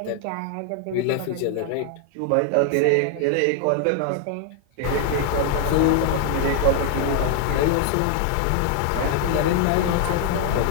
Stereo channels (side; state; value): both; different; correlation 0.00